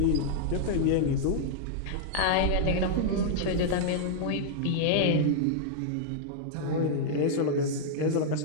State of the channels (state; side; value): different; both; correlation -0.01